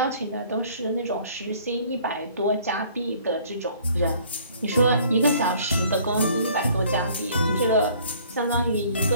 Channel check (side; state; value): both; inverted; correlation -0.56